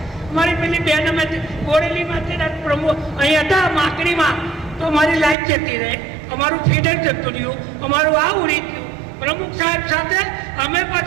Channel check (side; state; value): left; drops out; at 5.4 s